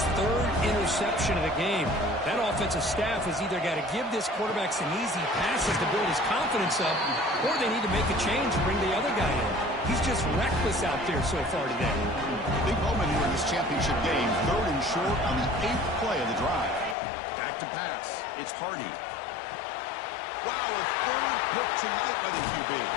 third interception of the game. That offensive staff has either got to give this quarterback some easy passes to build his confidence up, or they need to make a change and bring the other guy in. He's just reckless out there so far today. Big moment here in this championship game. 3rd and short on the 8th play of the drive. Back to pass. It's Hardy. Wow, a 3rd pick tonight by the QB.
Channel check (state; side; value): drops out; right; at 16.9 s